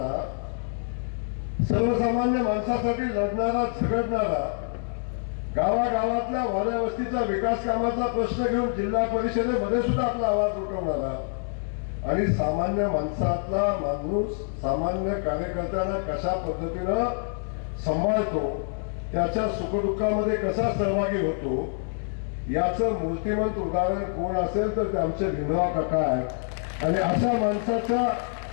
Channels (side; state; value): right; silent; 61 dB below the other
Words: सर्वसामान्य माणसासाठी लढणारा झगडणारा, गावागावातल्या वाड्या वस्तीचा विकास कामाचा प्रश्न घेऊन जिल्हा परिषदेमध्ये सुद्धा आपला आवाज उठवणारा आणि सामान्य माणसातला माणूस सामान्य कार्यकर्त्यांना कशा पद्धतीनं सांभाळतो, त्याच्या सुखदुःखामध्ये कसा सहभागी होतो, याचं मूर्तिमंत उदाहरण कोण असेल तर ते आमचे भिमराव काका आहेत. आणि अशा माणसाच्या